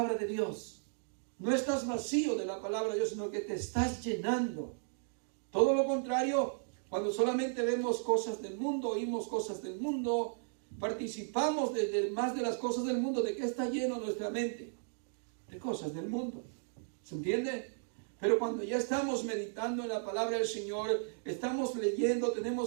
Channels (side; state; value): left; silent; digital silence